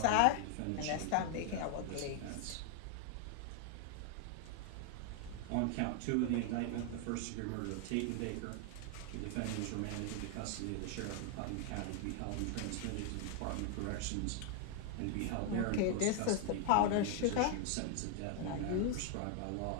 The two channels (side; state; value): both; different; correlation 0.00